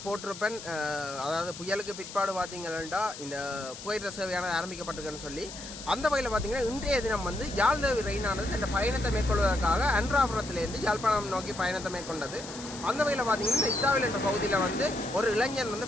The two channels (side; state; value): left; noise; hiss, 12 dB below the sound